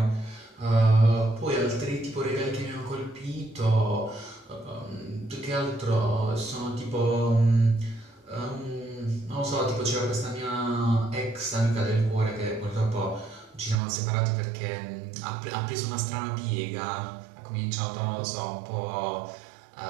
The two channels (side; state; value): left; drops out; at 13.8 s